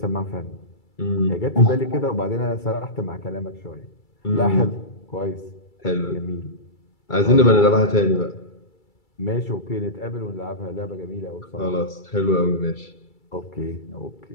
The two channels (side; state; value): right; late; 2.3 ms